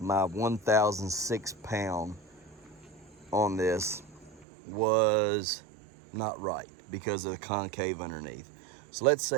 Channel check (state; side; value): drops out; left; at 4.5 s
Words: 1,006 pound on this was not right because of the concave underneath. So let's